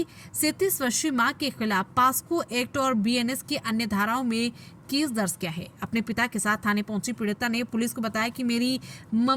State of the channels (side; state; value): both; identical; correlation 1.00